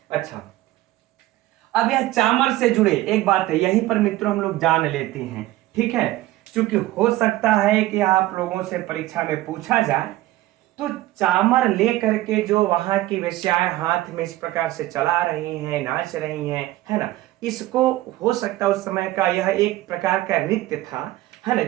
अच्छा, अब यह चामर से जुड़े एक बात है, यहीं पर मित्रों हम लोग जान लेते हैं। ठीक है, क्योंकि हो सकता है कि आप लोगों से परीक्षा में पूछा जाए तो चामर लेकर के जो वहां की वेश्याएं हाथ में इस प्रकार से चला रही हैं, नाच रही हैं, है ना, इसको हो सकता है उस समय का यह एक प्रकार का नृत्य था, है ना,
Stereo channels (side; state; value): left; quieter; 16.5 dB